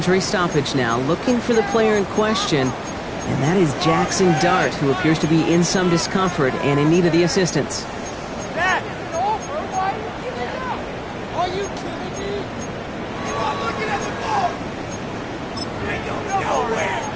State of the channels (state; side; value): identical; both; correlation 1.00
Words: stoppage now. Looking for the player in question, and that is Jackson Dart, who appears to be in some discomfort and in need of the assistance.